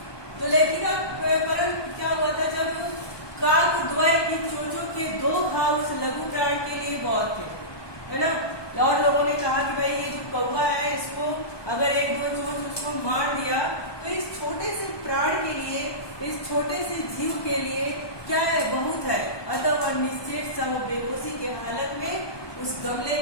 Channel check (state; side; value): late; right; 1.2 ms